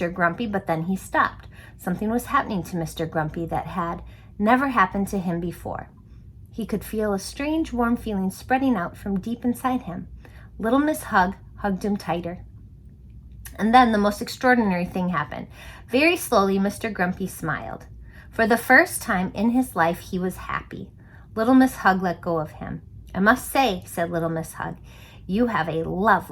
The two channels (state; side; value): identical; both; correlation 1.00